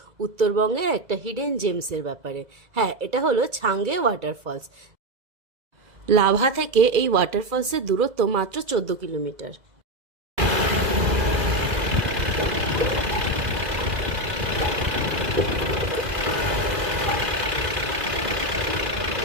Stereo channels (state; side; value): late; left; 2.0 ms